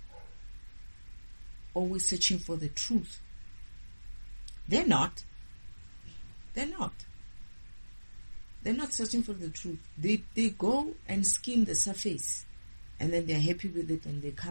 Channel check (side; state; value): both; inverted; correlation -1.00